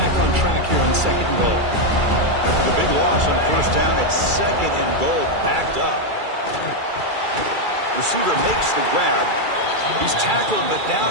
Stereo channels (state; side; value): late; left; 2.3 ms